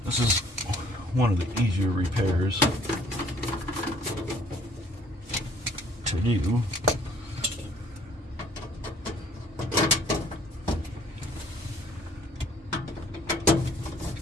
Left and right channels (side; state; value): both; normal; correlation 0.58